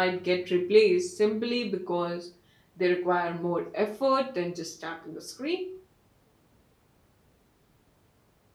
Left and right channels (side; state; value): both; identical; correlation 1.00